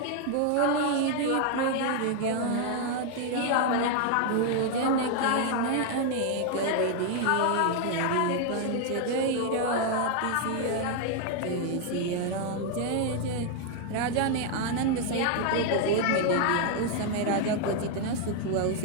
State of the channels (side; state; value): both; different; correlation 0.00